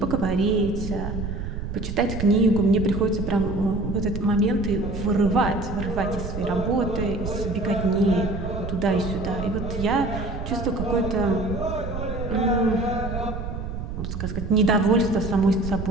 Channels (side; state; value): right; noise; rumble, 6 dB below the sound